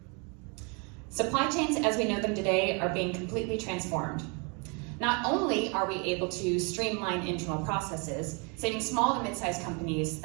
Supply chains as we know them today are being completely transformed. Not only are we able to streamline internal processes, saving small to mid-sized companies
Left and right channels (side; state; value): left; quieter; 33.6 dB